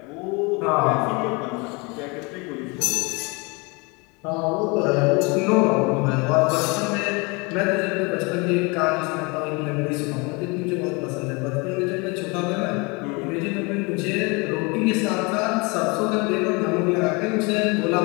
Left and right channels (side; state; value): right; quieter; 28.5 dB